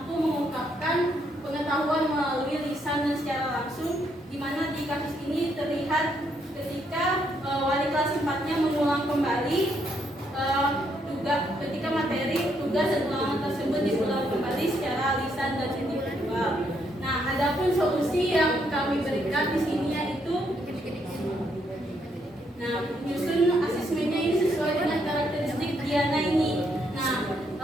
mengungkapkan pengetahuan melalui lisan dan secara langsung, di mana di kasus ini terlihat ketika wali kelas 4-nya mengulang kembali ketika materi, tugas, dan ulangan tersebut diulang kembali secara lisan dan individual. Nah, adapun solusi yang kami berikan di sini yaitu menyusun asesmennya ini sesuai dengan karakteristik Diana ini. Nah,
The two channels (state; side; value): normal; both; correlation 0.74